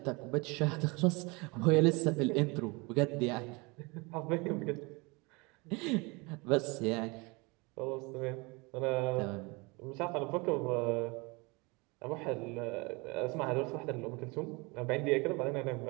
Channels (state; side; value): quieter; left; 27.0 dB